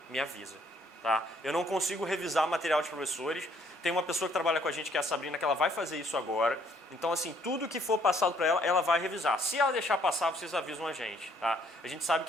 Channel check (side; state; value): both; normal; correlation 0.65